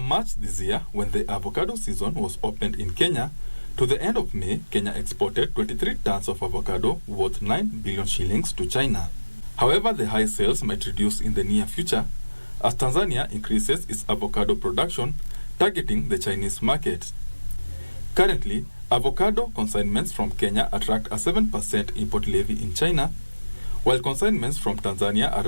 March this year, when the avocado season was opened in Kenya, to the end of May, Kenya exported 23 tons of avocado worth 9 billion shillings to China. However, the high sales might reduce in the near future as Tanzania increases its avocado production, targeting the Chinese market. Currently, avocado consignments from Kenya attract a 7% import levy in China, while consignments from Tanzania are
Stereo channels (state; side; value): inverted; both; correlation -1.00